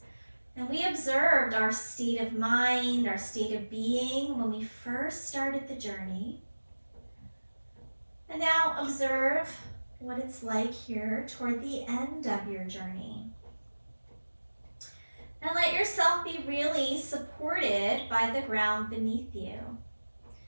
And we observed our state of mind, our state of being when we first started the journey. And now observe what it's like here toward the end of your journey. And let yourself be really supported by the ground beneath you.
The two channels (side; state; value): both; inverted; correlation -1.00